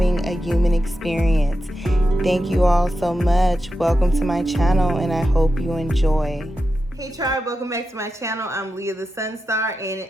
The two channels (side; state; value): both; normal; correlation 0.90